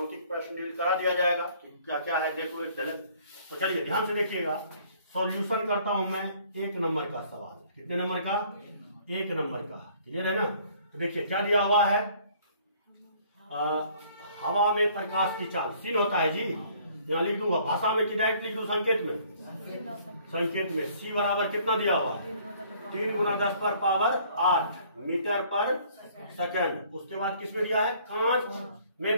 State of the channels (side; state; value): both; inverted; correlation -0.59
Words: प्रश्न डील करा दिया जाएगा कि क्या क्या है, देखो एक चले। तो चलिए ध्यान से देखिएगा, सॉल्यूशन करता हूं मैं 1 नंबर का सवाल। कितने नंबर का, 1 नंबर का। क्लियर है ना। तो देखिए क्या दिया हुआ है, हवा में प्रकाश की चाल सीन होता है जी, यहाँ लिख दूंगा, भाषा में कि डायरेक्ट लिख दूं, संकेत में, संकेत में सी बराबर कितना दिया हुआ है, 3 × 10⁸ मीटर पर सेकंड। उसके बाद किसमें दिया है, कांच